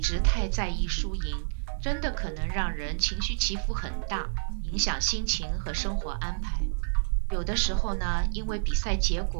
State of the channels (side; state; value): left; silent; digital silence